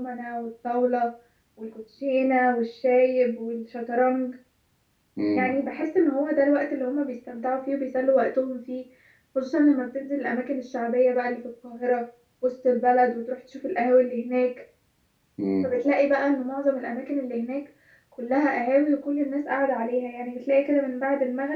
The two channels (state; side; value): identical; both; correlation 1.00